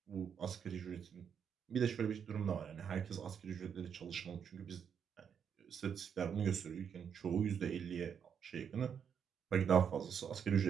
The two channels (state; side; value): quieter; left; 7.6 dB